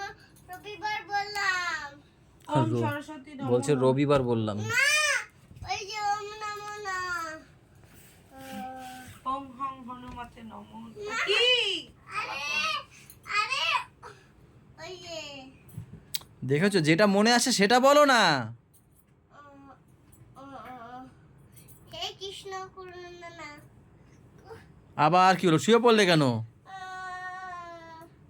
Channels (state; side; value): identical; both; correlation 1.00